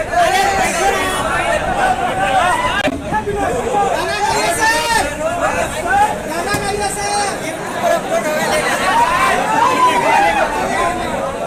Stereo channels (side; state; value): both; identical; correlation 1.00